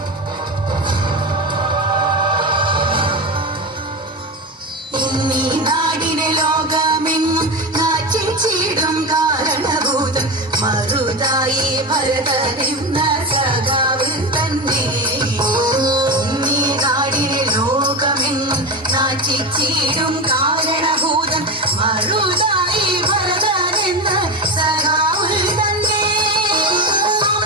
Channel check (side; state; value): both; normal; correlation 0.21